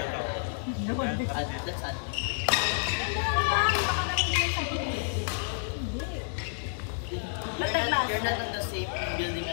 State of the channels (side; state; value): right; silent; digital silence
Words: that. That's ad. You're not on the same building